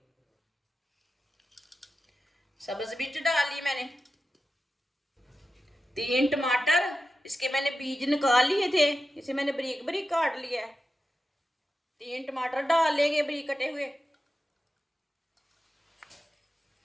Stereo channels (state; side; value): normal; both; correlation 0.91